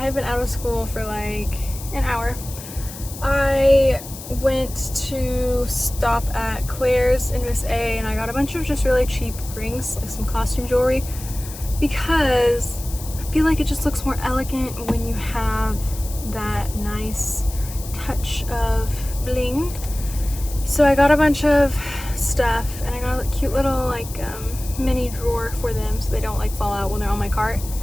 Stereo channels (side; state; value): left; noise; hiss, 13 dB below the sound